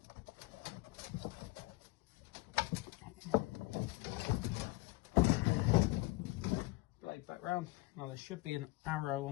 Blade back round. Now there should be an arrow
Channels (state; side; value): quieter; right; 20.8 dB